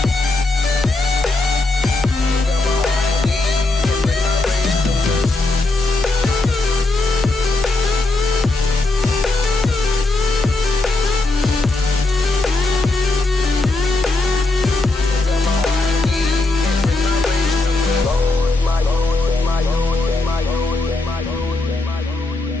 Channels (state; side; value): quieter; right; 3.1 dB